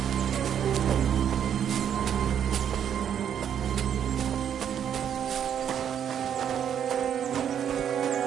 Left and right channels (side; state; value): left; quieter; 9.0 dB